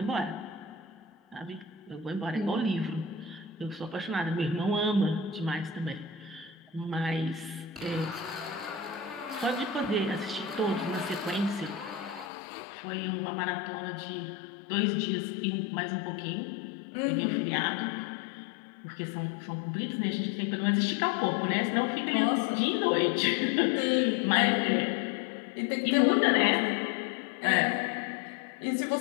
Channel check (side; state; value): right; drops out; at 12.3 s